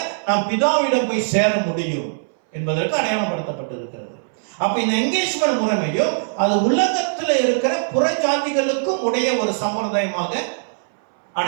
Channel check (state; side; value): silent; left; 61 dB below the other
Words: நாம் பிதாவிடம் போய் சேர முடியும் என்பதற்கு அடையாளப்படுத்தப்பட்டிருக்கிறது. அப்ப இந்த என்கேஜ்மெண்ட் முறைமையும் அது உலகத்தில் இருக்கிற புற ஜாதிகளுக்கும் உடைய ஒரு சம்பிரதாயமாக